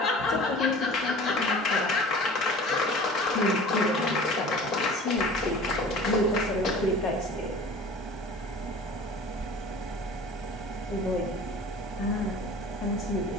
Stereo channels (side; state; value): both; normal; correlation 0.42